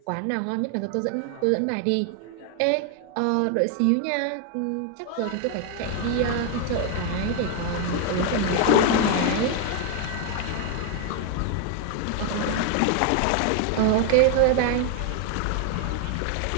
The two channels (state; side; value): different; both; correlation 0.00